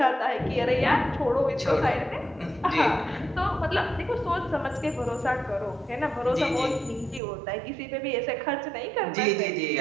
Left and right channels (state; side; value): drops out; left; at 7.2 s